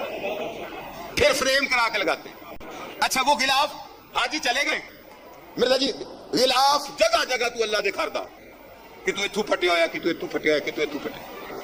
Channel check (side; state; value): both; identical; correlation 1.00